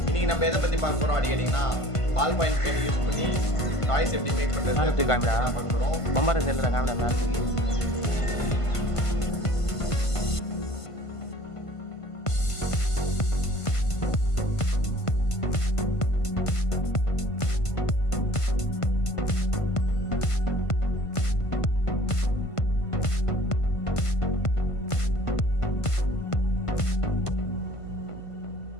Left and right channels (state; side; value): late; right; 1.5 ms